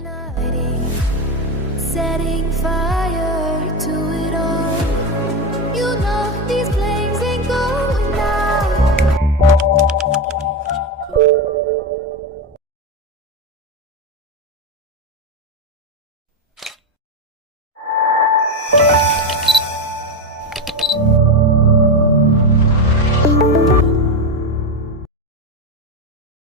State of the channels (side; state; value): both; normal; correlation 0.14